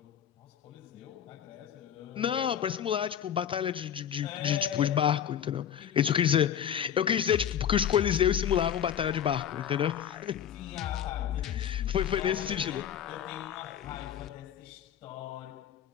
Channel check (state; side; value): quieter; right; 9.3 dB